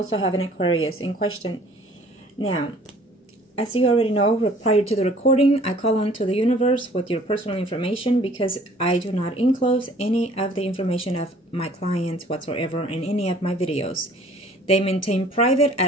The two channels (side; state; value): both; normal; correlation 0.54